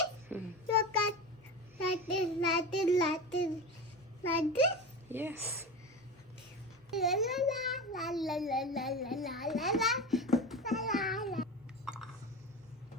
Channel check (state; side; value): normal; both; correlation 0.26